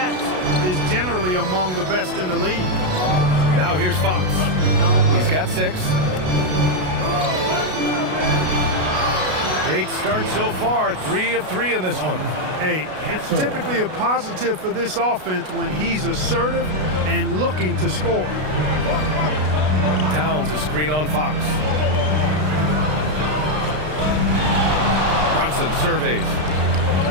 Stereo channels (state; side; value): late; left; 33 ms